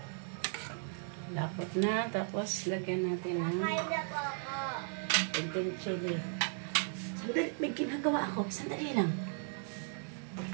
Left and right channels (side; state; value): left; silent; 54 dB below the other